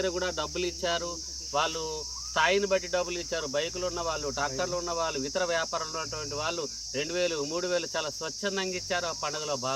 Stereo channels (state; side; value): identical; both; correlation 1.00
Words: కూడా డబ్బులు ఇచ్చారు. వాళ్ళు స్థాయిని బట్టి డబ్బులు ఇచ్చారు. బైకులు ఉన్న వాళ్ళు, ట్రాక్టర్లు ఉన్న వాళ్ళు, ఇతర వ్యాపారంలో ఉన్నటువంటి వాళ్ళు 2000, 3000 చాలా స్వచ్ఛందంగా ఇచ్చారు. ఆ పండుగలో